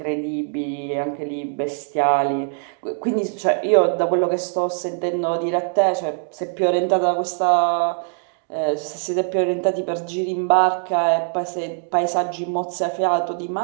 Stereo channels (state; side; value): silent; left; 64 dB below the other